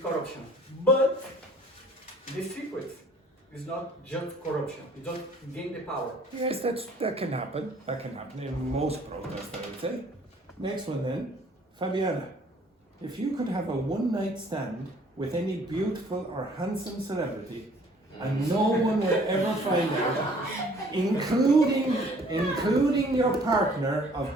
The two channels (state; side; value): normal; both; correlation 0.56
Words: corruption, but the secret is not just corruption. You don't gain the power. Yes, that can happen. That can happen in most protests, I would say. Next one then. Fabiana, if you could have a one-night stand with any beautiful or handsome celebrity and no one would ever find out, including your partner of